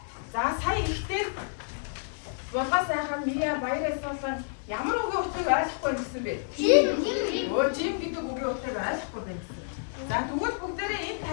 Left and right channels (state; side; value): silent; right; 58 dB below the other